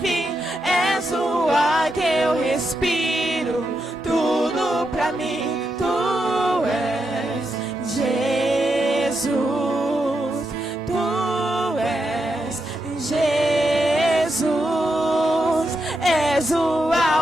fim, és o ar que eu respiro, tudo pra mim, tu és Jesus, tu és Jesus, és o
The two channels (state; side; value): normal; both; correlation 0.84